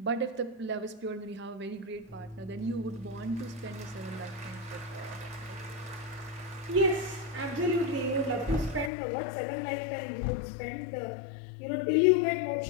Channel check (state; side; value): drops out; right; at 8.9 s